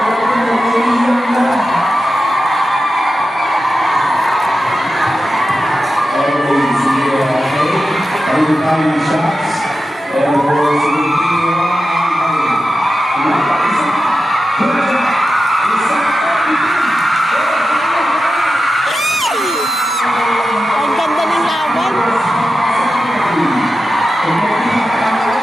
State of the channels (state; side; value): normal; both; correlation 0.92